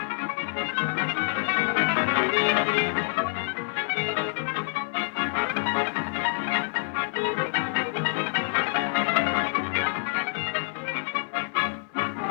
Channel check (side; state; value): right; silent; digital silence